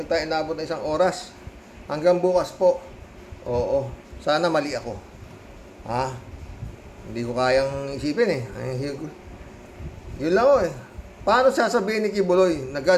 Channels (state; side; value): identical; both; correlation 1.00